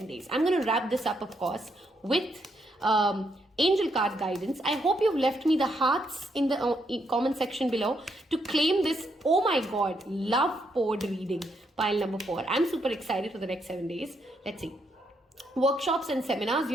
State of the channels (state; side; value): normal; both; correlation 0.77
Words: days. I'm going to wrap this up, of course, with angel card guidance. I hope you've left me the hearts in the comment section below to claim this, oh my god, love poured reading, pile number 4. I'm super excited for the next 7 days. Let's see. Workshops and seminars,